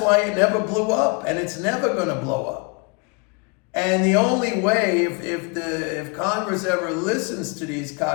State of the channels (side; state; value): right; quieter; 30.3 dB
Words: why it never blew up, and it's never going to blow up. And the only way, if Congress ever listens to these